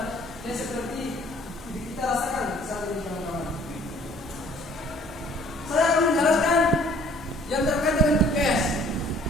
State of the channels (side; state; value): both; normal; correlation 0.56